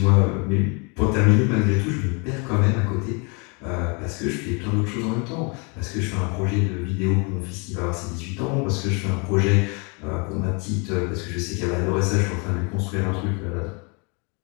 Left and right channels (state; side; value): quieter; right; 32.8 dB